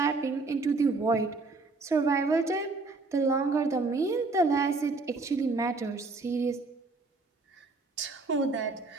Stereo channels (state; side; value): quieter; left; 3.6 dB